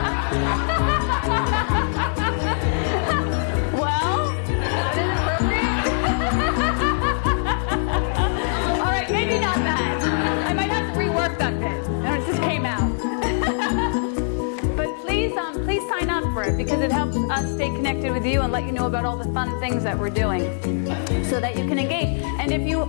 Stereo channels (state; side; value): silent; right; 64 dB below the other